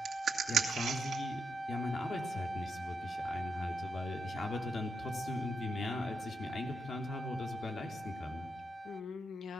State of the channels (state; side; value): normal; both; correlation 0.83